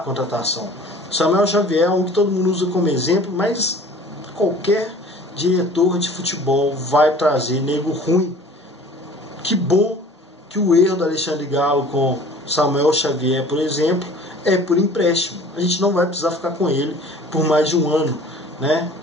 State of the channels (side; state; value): both; normal; correlation 0.47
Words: Samuel Xavier é um que todo mundo usa como exemplo, mas qualquer diretor de futebol vai trazer nego ruim. Que bom que o erro do Alexandre Galo com Samuel Xavier, por exemplo, é por empréstimo. A gente não vai precisar ficar com ele por mais de um ano, né?